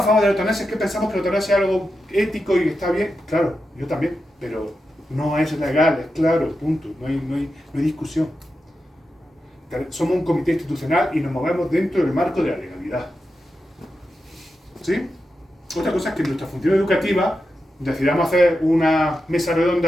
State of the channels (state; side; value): normal; both; correlation 0.89